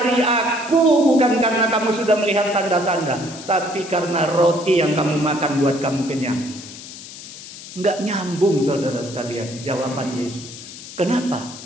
aku bukan karena kamu sudah melihat tanda-tanda, tapi karena roti yang kamu makan buat kamu kenyang. Enggak nyambung, saudara sekalian, jawaban Yesus. Kenapa?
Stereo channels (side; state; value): left; noise; hiss, 14 dB below the sound